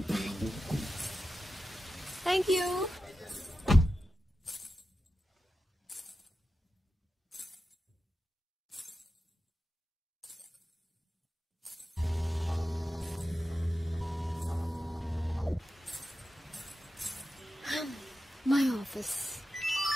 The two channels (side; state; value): both; normal; correlation 0.91